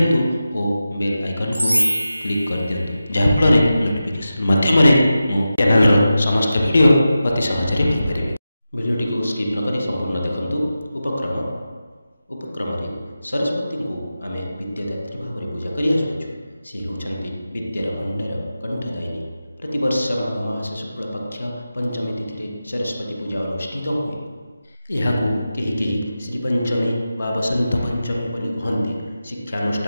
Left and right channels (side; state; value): both; inverted; correlation -0.93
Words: और बेल आइकन को क्लिक कर दियंतु जहाँफल नोटिफिकेशन माध्यम मो चैनल समस्त वीडियो अति सहज पाइपर। वीडियोटी को स्किप नक संपूर्ण देखु। उपक्रम सरस्वती को आम विद्यादात्री भाव में पूजा कर सी होती विद्यार भंडार कंठदायिनी। प्रतिवर्ष माघ मास शुक्ल पक्ष पंचमी तिथि सरस्वती पूजा अनुष्ठित हुए। यह कहीं श्रीपंचमी व बसंत पंचमी बोली कहते।